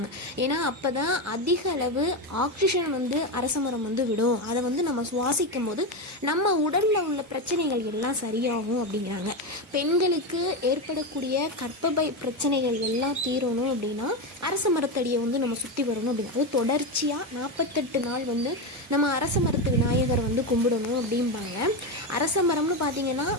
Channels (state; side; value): normal; both; correlation 0.13